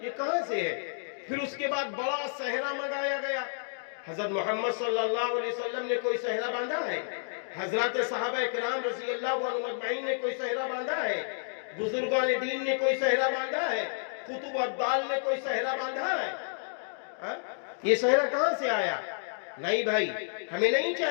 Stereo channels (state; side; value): silent; right; digital silence